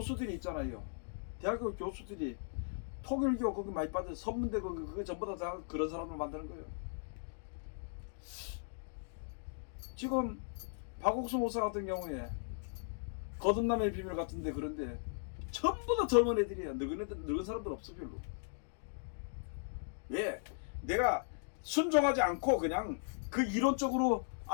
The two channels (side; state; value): right; silent; digital silence